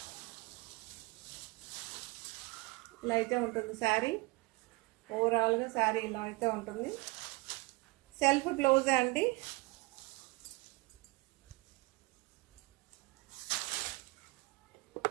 ఇలా అయితే ఉంటుంది శారీ. ఓవరాల్గా శారీ ఇలా అయితే ఉంటుంది. సెల్ఫ్ బ్లౌజే అండి.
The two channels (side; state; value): left; quieter; 24.5 dB